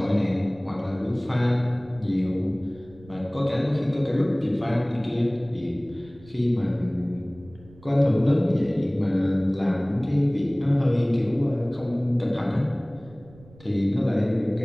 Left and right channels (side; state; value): right; noise; rumble, 23 dB below the sound